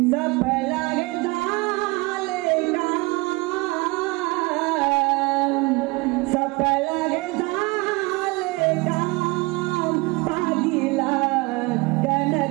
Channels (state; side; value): quieter; left; 25.0 dB